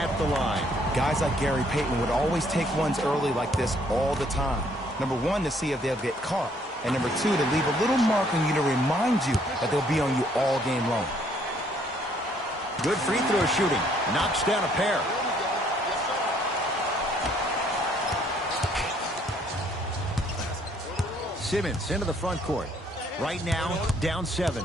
the line. Guys like Gary Payton would always take ones early like this all the time. Number one, to see if they'll get caught. And number two, to leave a little mark on you to remind you that they'll be on you all game long. Good free throw shooting. Knocks down a pair. Simmons into the front court. Right now, down 7.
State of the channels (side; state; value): both; normal; correlation 0.65